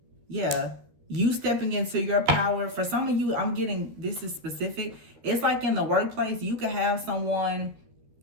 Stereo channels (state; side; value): late; left; 13 ms